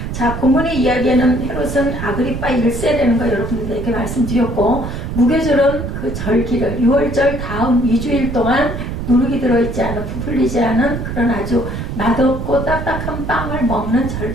자, 본문의 이야기에는 헤롯은 아그리파 1세라는 거 여러분들에게 말씀드렸고, 무교절은 그 절기를 6월절 다음 2주일 동안 누룩이 들어있지 않은, 부풀리지 않은 그런 아주 맛없고 딱딱한 빵을 먹는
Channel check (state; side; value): noise; right; rumble, 5 dB below the sound